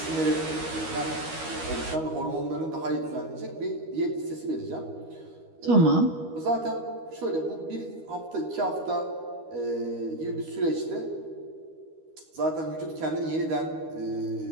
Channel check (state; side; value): late; left; 13 ms